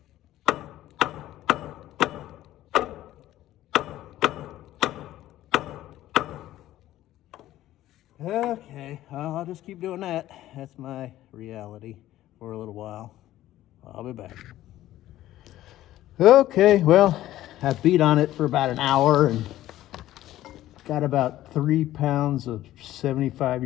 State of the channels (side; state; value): right; quieter; 14.3 dB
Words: Okay, I'll just keep doing that. That's my reality for a little while. I'll be back. Okay, well, I beat on it for about an hour and got about 3 pounds of